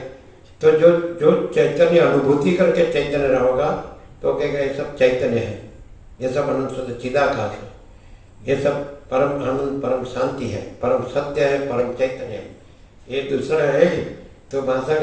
तो जो जो चैतन्य अनुभूति करके चैतन्य रहोगा तो कहेगा ये सब चैतन्य है, ये सब अनंत शुद्ध चिदाकाश है, ये सब परम आनंद, परम शांति है, परम सत्य है, परम चैतन्य है। ये दूसरा है तो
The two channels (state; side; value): identical; both; correlation 1.00